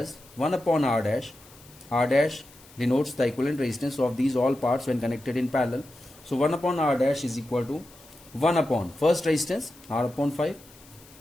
1 upon R dash. R dash denotes the equivalent resistance of these all parts when connected in parallel. So 1 upon R dash is equal to 1 upon first resistance R upon 5,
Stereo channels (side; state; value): left; noise; hiss, 24 dB below the sound